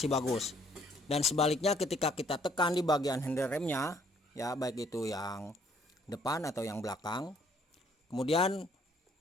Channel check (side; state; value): both; normal; correlation 0.64